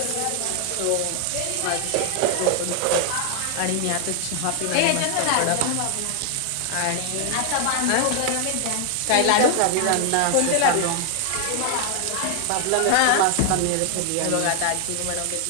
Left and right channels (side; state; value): both; different; correlation 0.00